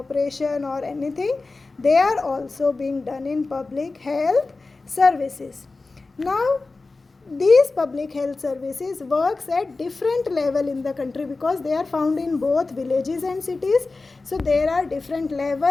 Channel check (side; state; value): right; quieter; 3.6 dB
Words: or anything, they are also being done in public health services. Now these public health services works at different level in the country, because they are found in both villages and cities. So there are different